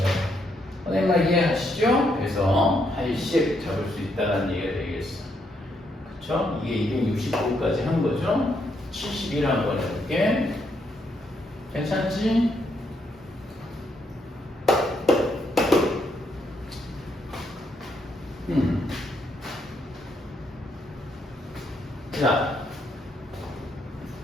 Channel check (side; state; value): both; normal; correlation 0.76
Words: 선생님 이해하시죠? 그래서 80 잡을 수 있다는 얘기가 되겠어. 그쵸? 이게 269까지 한 거죠? 71 한번 해볼게. 괜찮지?